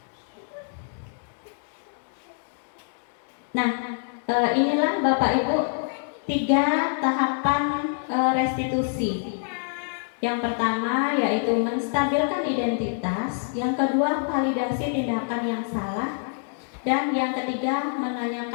Nah, inilah Bapak Ibu 3 tahapan restitusi. Yang pertama yaitu menstabilkan identitas, yang kedua validasi tindakan yang salah, dan yang ketiga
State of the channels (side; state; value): right; silent; digital silence